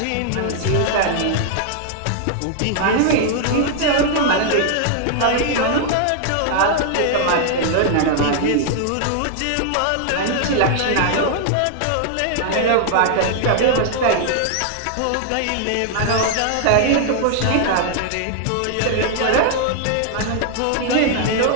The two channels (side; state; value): both; different; correlation 0.00